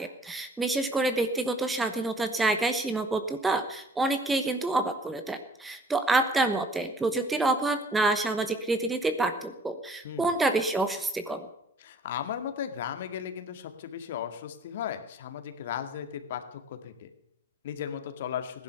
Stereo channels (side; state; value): both; normal; correlation 0.53